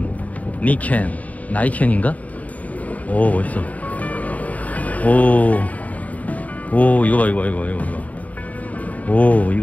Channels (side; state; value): right; late; 0.071 ms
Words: 니켄, 나이켄인가? 오, 멋있어. 오, 이거 봐, 이거. 오,